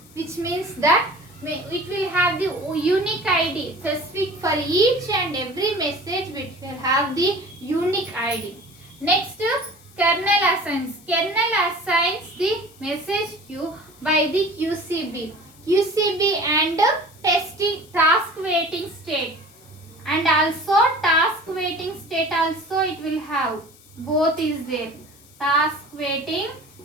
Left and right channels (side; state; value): left; noise; hiss, 25 dB below the sound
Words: which means that it will have the unique ID specific for each and every message, which will have the unique ID. Next, kernel assigns. Kernel assigns the message queue by the QCB. QCB and task waiting state. And also task waiting state also it will have. Both is there. Task waiting